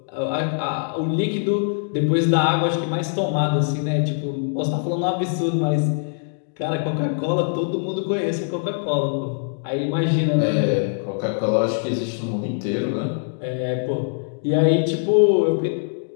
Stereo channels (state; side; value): silent; right; digital silence